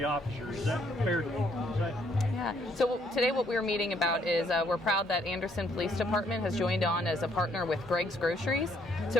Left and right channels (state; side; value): normal; both; correlation 0.68